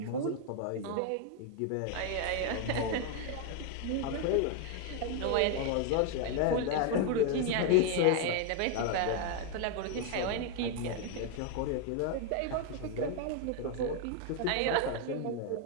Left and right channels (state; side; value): different; both; correlation 0.01